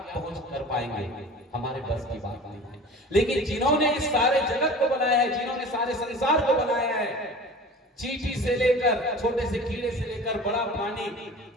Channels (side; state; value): both; normal; correlation 0.39